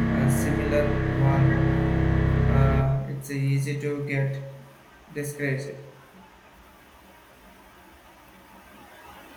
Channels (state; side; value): identical; both; correlation 1.00